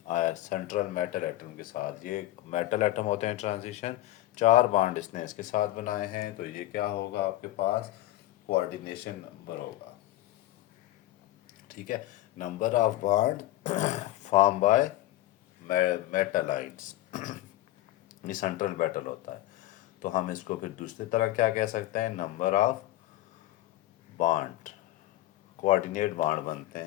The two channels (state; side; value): quieter; right; 15.7 dB